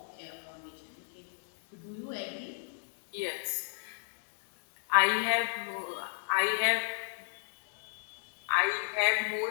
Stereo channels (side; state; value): right; silent; digital silence